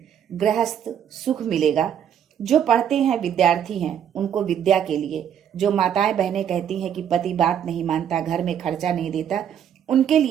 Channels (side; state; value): left; quieter; 9.1 dB